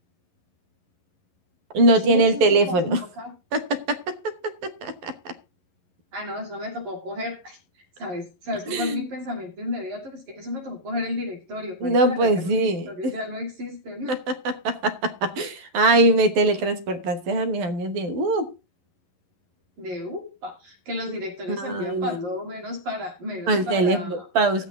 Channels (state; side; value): late; left; 11 ms